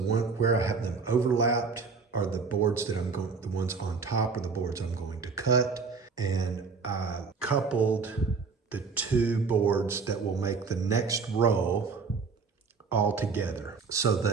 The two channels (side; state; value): left; quieter; 5.0 dB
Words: where I have them overlapped are the boards that the ones on top are the boards I'm going to cut. And I coupled the 2 boards that will make the next row all together. So